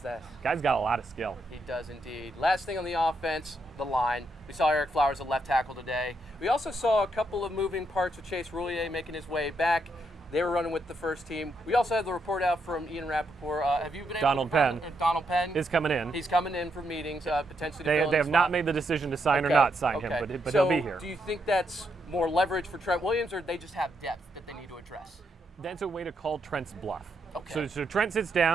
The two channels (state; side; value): normal; both; correlation 0.79